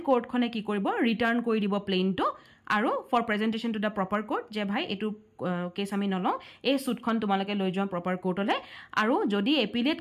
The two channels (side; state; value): both; identical; correlation 1.00